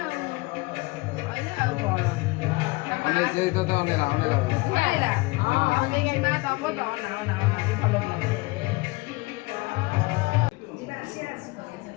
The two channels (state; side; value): quieter; right; 23.9 dB